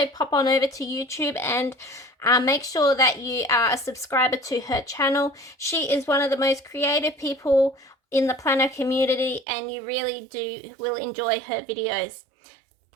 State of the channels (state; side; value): drops out; left; at 9.5 s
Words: pop on over to YouTube and make sure that you are a subscriber to her channel. She is one of the most creative people in the planner community, and you really will enjoy her videos.